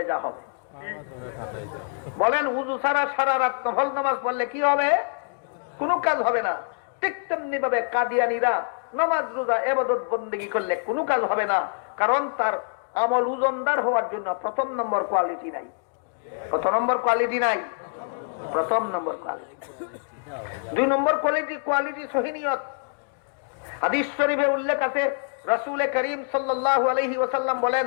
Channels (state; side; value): silent; right; digital silence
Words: যা হবে। বলেন উযু ছাড়া সারা রাত নফল নামাজ পড়লে কি হবে? কোনো কাজ হবে না। ঠিক তেমনি ভাবে কাদিয়ানীরা নামাজ রোজা ইবাদত বন্দেগী করলে কোনো কাজ হবে না, কারণ তার আমল ওজনদার হওয়ার জন্য প্রথম নম্বর কোয়ালিটি নাই। কত নম্বর কোয়ালিটি নাই? প্রথম নম্বর কোয়ালিটি। 2 নম্বর কোয়ালিটি সহিনিয়ত। হাদিস শরীফে উল্লেখ আছে, রাসূল করিম সাল্লাল্লাহু আলাইহি ওয়াসাল্লাম বলেন,